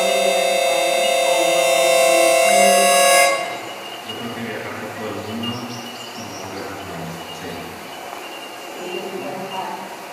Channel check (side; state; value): both; identical; correlation 1.00